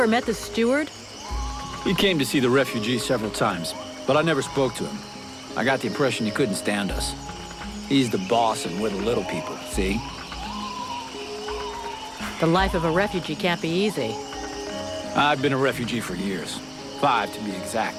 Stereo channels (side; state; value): both; identical; correlation 1.00